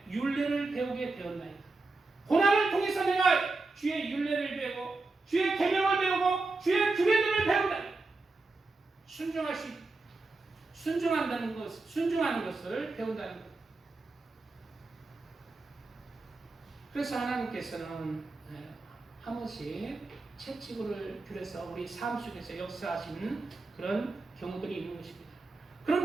율례를 배우게 되었나이다. 고난을 통해서 내가 주의 율례를 배우고 주의 계명을 배우고 주의 규례들을 배운다. 순종하는 것을 배운다는 것. 그래서 하나님께서는 한 번씩 채찍을 들여서 우리 삶 속에서 역사하시는 그런 경우들이 있는 것입니다.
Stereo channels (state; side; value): quieter; left; 3.5 dB